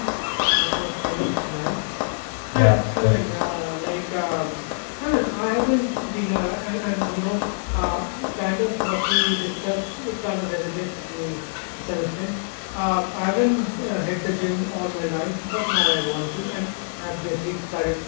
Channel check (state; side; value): silent; right; digital silence